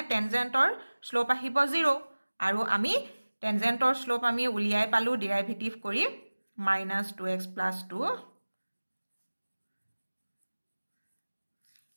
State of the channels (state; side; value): inverted; both; correlation -1.00